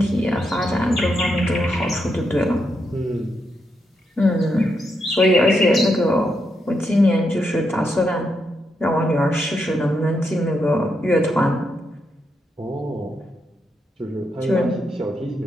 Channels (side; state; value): both; normal; correlation 0.82